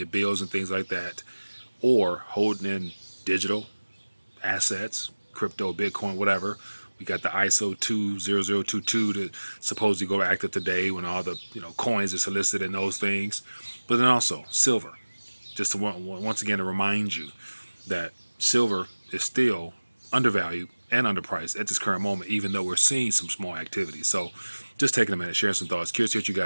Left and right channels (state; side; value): inverted; both; correlation -1.00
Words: bills and things like that, or holding in digital assets, crypto, Bitcoin, whatever. We got the ISO 20022 to supposedly go active today when all the coins are solicited and those things. But then also silver, just to once again to remind you that silver is still undervalued and underpriced at this current moment, even though we're seeing some small activity. So just taking a minute, sharing some thoughts. Curious to what you